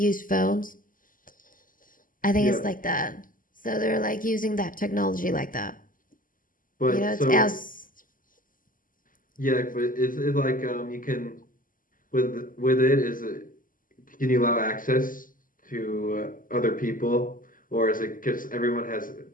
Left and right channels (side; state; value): right; late; 0.40 ms